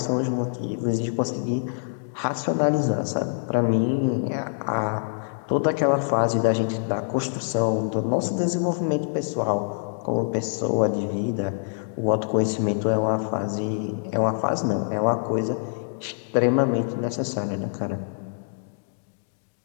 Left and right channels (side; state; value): right; silent; digital silence